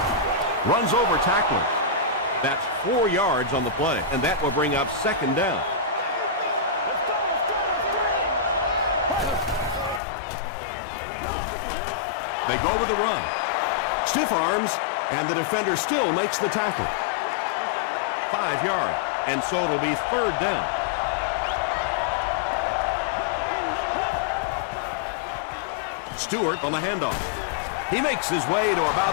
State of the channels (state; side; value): drops out; right; at 10.0 s